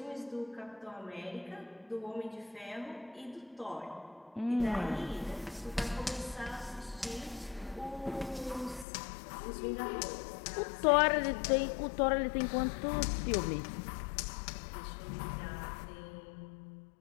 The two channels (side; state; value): right; drops out; at 8.8 s